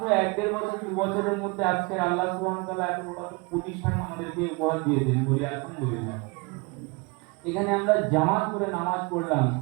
1-1.5 বছর 2 বছরের মধ্যে আজকের আল্লাহ সুবহানাহু ওয়া তাআলা এত বড় একটা প্রতিষ্ঠান আমাদেরকে উপহার দিয়েছেন, বলি আলহামদুলিল্লাহ। এখানে আমরা জামাত করে নামাজ পড়লাম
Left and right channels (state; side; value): quieter; left; 28.3 dB